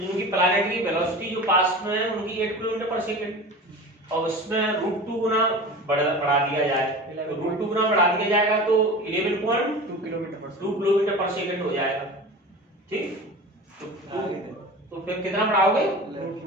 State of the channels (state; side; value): normal; both; correlation 0.34